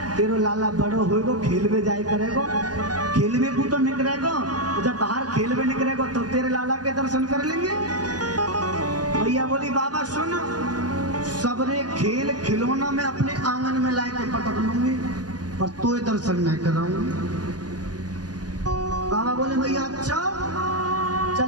तेरो लाला बड़ो होएगो खेलवे जाए करेगो, खेलवे को तो निकलेगो, जब बाहर खेलवे निकलेगो तब तो तेरे लाला के दर्शन कर लेंगे। भैया बोली बाबा सुन, सबरे खेल खिलौना में अपने आंगन में ला के पटक लूंगी पर तो दर्शन नहीं कराऊंगी। बाबा बोले भैया अच्छा चल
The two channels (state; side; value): late; left; 0.69 ms